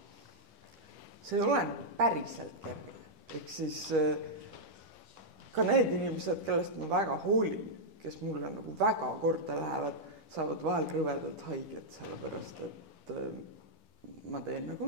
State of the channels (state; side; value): late; left; 10 ms